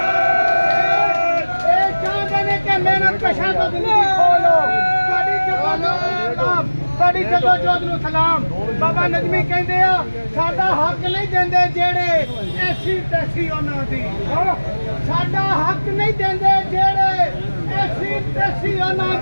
ये चाहते हैं कि मेहनत कशां तो जिंदगी खोलो। साडी जदोजहद नूं सलाम। बाबा नजमी कहंदे आ साडा हक नहीं देंदे जेड़े ऐसी तैसी उन्हां दी, साडा हक नहीं देंदे जेड़े ऐसी तैसी उन्हां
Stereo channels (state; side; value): inverted; both; correlation -1.00